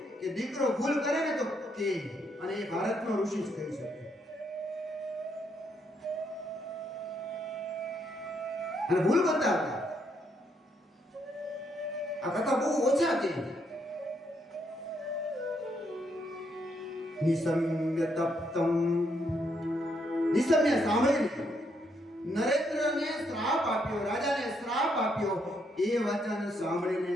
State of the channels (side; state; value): both; normal; correlation 0.75